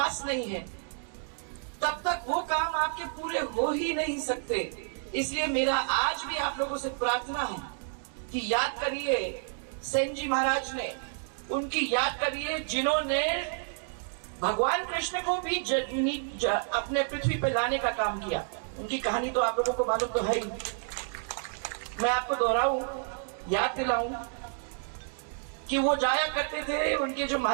नहीं है, तब तक वो काम आपके पूरे हो ही नहीं सकते। इसलिए मेरा आज भी आप लोगों से प्रार्थना है कि याद करिए सेन जी महाराज ने, उनकी याद करिए जिन्होंने भगवान कृष्ण को भी अपने पृथ्वी पे लाने का काम किया। उनकी कहानी तो आप लोगों को मालूम तो है ही, मैं आपको दोहराऊं, याद दिलाऊं कि वो जाया करते थे, उनके जो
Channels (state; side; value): silent; left; 58 dB below the other